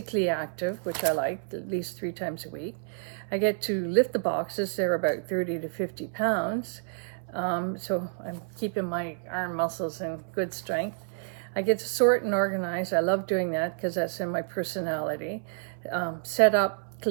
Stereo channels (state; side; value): silent; left; 59 dB below the other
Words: active, which I like, at least 3 times a week. I get to lift the boxes. They're about 30 to 50 pounds. So I'm keeping my arm muscles in good strength. I get to sort and organize. I love doing that because that's in my personality. Set up,